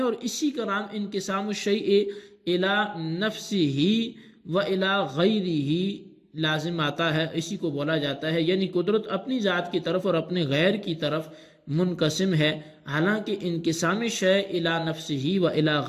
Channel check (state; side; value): identical; both; correlation 1.00